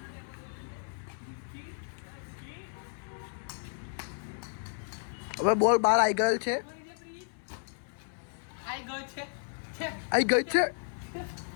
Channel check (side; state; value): right; silent; 56 dB below the other